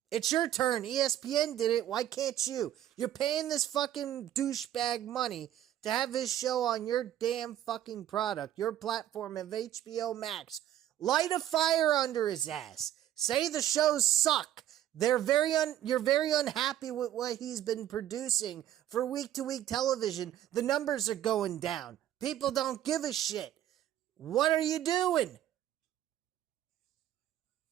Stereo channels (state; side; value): quieter; left; 12.0 dB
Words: it's your turn. ESPN did it. Why can't you? You're paying this fucking douchebag money to have his show on your damn fucking product, your platform of HBO Max. Light a fire under his ass. Say the shows suck. You're very unhappy with what he's been producing for week-to-week television. The numbers are going down. People don't give a shit. What are you doing?